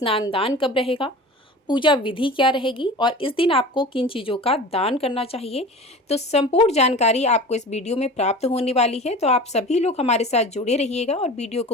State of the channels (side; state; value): both; normal; correlation 0.37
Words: दान कब रहेगा, पूजा विधि क्या रहेगी और इस दिन आपको किन चीज़ों का दान करना चाहिए। तो संपूर्ण जानकारी आपको इस वीडियो में प्राप्त होने वाली है। तो आप सभी लोग हमारे साथ जुड़े रहिएगा और वीडियो